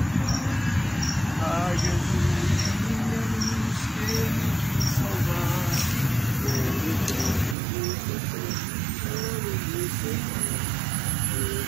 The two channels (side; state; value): left; drops out; at 7.6 s